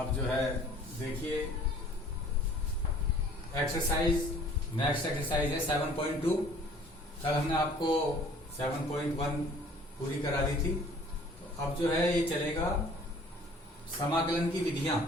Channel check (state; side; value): normal; both; correlation 0.52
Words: जो है देखिए एक्सरसाइज, नेक्स्ट एक्सरसाइज है 7.2। कल हमने आपको 7.1 पूरी करा दी थी। तो अब जो है ये चलेगा समाकलन की विधियां।